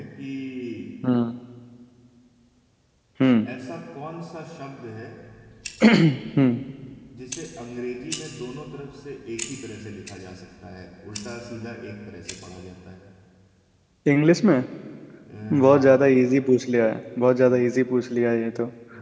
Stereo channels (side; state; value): both; identical; correlation 1.00